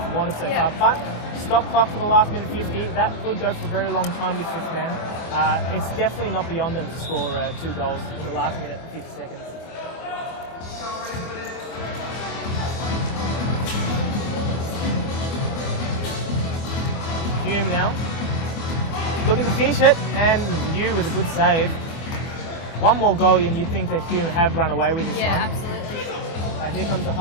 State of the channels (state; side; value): late; right; 24 ms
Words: wanted so far. But stop clock for the last minute 50, that could go for a very long time with fifth man. It's definitely not beyond them to score 2 goals in the last minute 50 seconds. Hume now, looking to finish it, and you with a good save. One more goal and you think that Hume have run away with this one. Yeah, absolutely. Here comes the